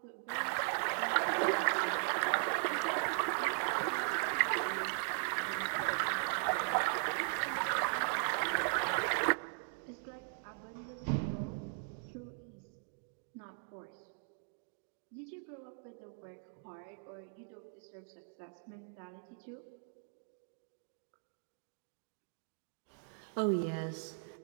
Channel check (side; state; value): left; silent; digital silence